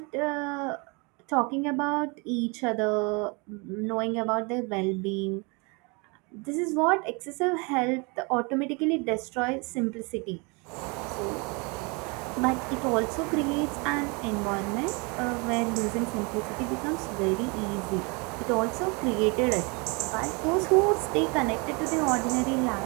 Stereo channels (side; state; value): left; quieter; 30.3 dB